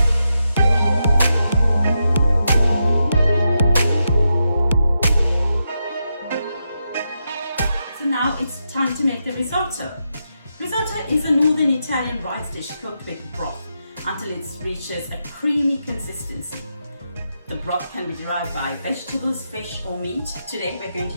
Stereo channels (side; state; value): both; inverted; correlation -0.85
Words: So now it's time to make the risotto. Risotto is a northern Italian rice dish cooked with broth until it reaches a creamy consistency. The broth can be derived by vegetables, fish or meat. Today we're going